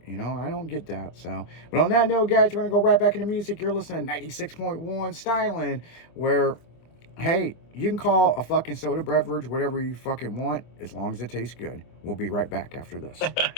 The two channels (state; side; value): late; right; 25 ms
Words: I don't get that. So, but on that note, guys, we're going to go right back into music. You're listening to 96.1 Styling, where, hey, you can call a fucking soda beverage whatever you fucking want, as long as it tastes good. We'll be right back after